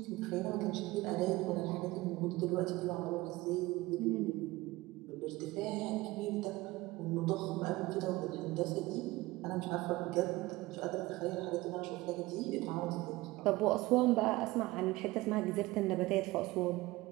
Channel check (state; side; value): quieter; left; 19.8 dB